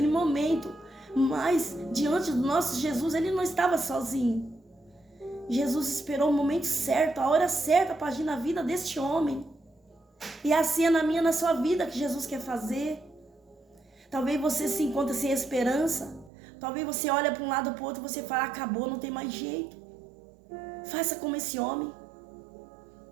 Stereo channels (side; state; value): left; drops out; at 16.3 s